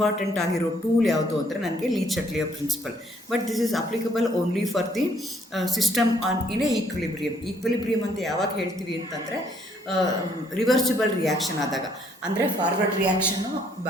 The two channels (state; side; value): normal; both; correlation 0.66